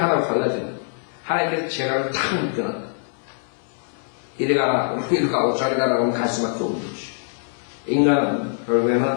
갈라집니다. 하나님께서 재갈을 탁 묶어놨다. 이리 가라, 이리 가고 저리 가라고 하면 갈 수밖에 없는 것이죠. 인간은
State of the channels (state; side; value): silent; right; 60 dB below the other